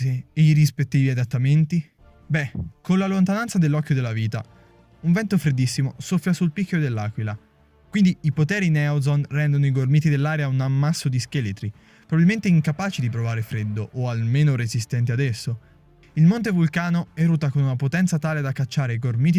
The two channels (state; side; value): identical; both; correlation 1.00